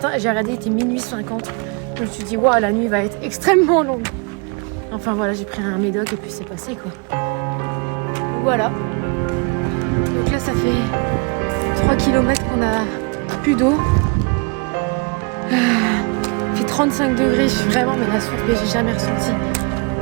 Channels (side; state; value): left; quieter; 32.4 dB